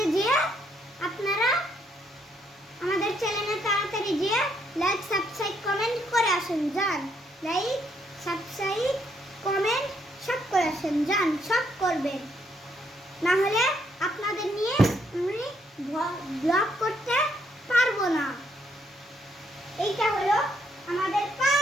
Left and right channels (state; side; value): normal; both; correlation 0.72